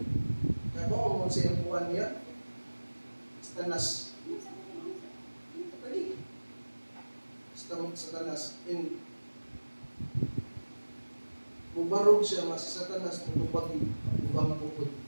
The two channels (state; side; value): inverted; both; correlation -1.00